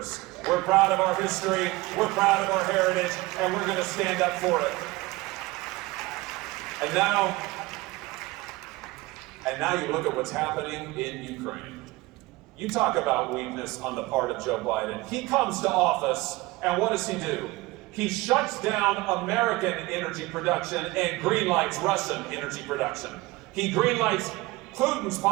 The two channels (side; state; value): left; quieter; 20.8 dB